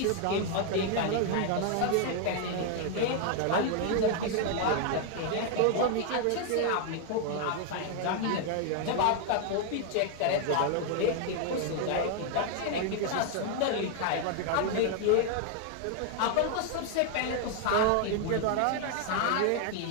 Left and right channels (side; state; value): both; different; correlation 0.00